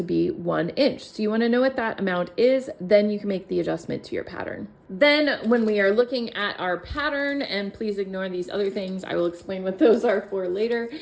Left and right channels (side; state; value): both; identical; correlation 1.00